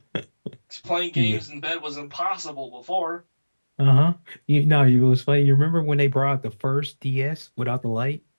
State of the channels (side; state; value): both; inverted; correlation -1.00